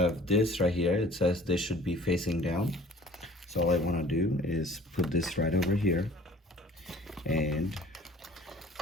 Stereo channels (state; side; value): normal; both; correlation 0.49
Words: this right here. It says this should be facing down. So all I want to do is put this right over here and